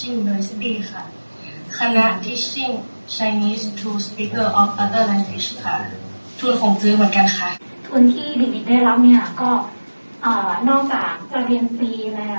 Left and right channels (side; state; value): both; inverted; correlation -1.00